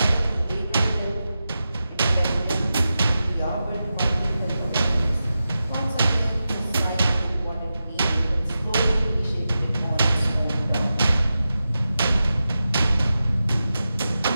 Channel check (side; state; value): both; inverted; correlation -0.91